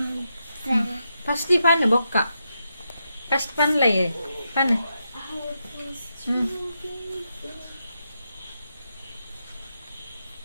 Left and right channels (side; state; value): both; inverted; correlation -0.85